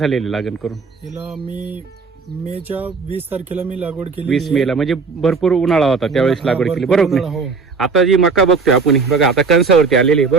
लागण करून? हिला मी मेच्या 20 तारखेला मी लागवड केली. 20 मेला म्हणजे भरपूर उन्हाळा होता त्यावेळेस लागवड केली, बरोबर ना? हो आता जी मका बघतोय आपण, बघा आता कणसावरती आलेली आहे,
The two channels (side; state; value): left; quieter; 4.8 dB